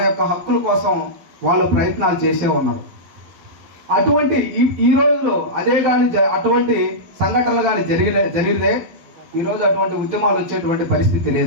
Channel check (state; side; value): late; left; 12 ms